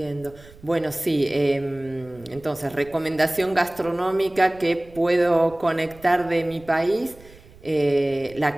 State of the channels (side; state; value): right; noise; rumble, 23 dB below the sound